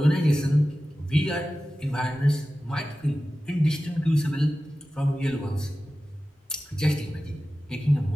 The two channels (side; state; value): both; normal; correlation 0.95